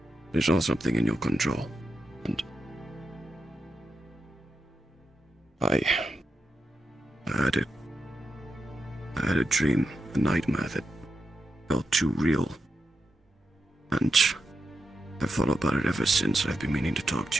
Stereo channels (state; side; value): normal; both; correlation 0.87